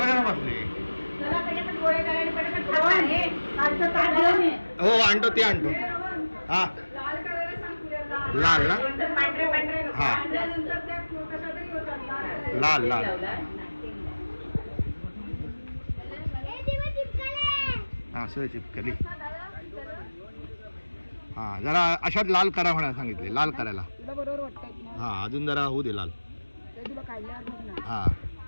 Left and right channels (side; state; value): both; inverted; correlation -1.00